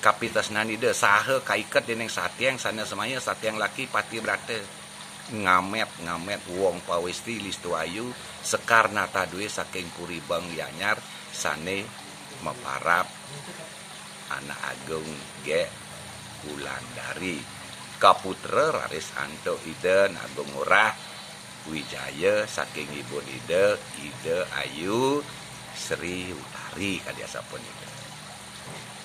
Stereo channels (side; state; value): both; identical; correlation 1.00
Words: kapitas nanida saha kaiket dening satiang sana semaya satiang laki pati berata. Ngamet wong pawesti listu ayu sekar nata duwe saking kuribang yanyar sane meparap anak agung ge Wulandari kaputra raris anto ide agung murah Wijaya saking ibu ide ayu Sri Utari kadiasa pun ide